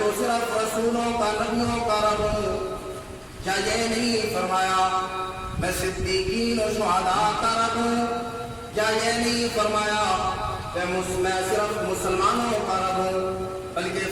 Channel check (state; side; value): identical; both; correlation 1.00